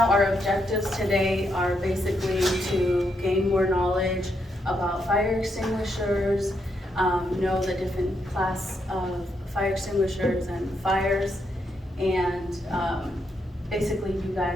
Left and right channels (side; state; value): both; normal; correlation 0.79